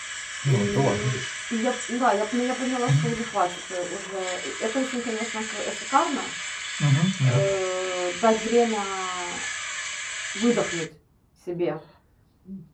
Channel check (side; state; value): both; identical; correlation 1.00